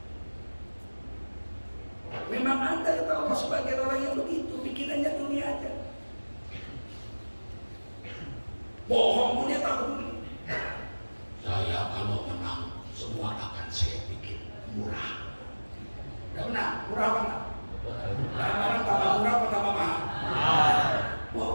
memang ada kata Allah sebagai orang yang begitu, pikirannya dunia aja. Bohong pun dia tak peduli. Saya kalau menang semua akan saya bikin murah. Tidak benar, murah apa enggak? Barang tambah murah apa tambah mahal?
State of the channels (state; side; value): inverted; both; correlation -1.00